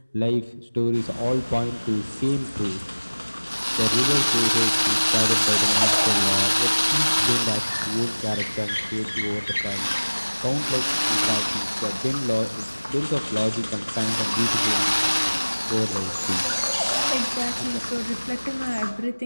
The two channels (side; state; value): both; inverted; correlation -1.00